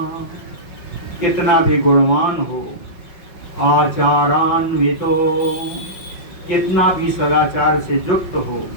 कितना भी गुणवान हो, आचारान्वितो, कितना भी सदाचार से युक्त हो,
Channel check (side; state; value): right; late; 5.4 ms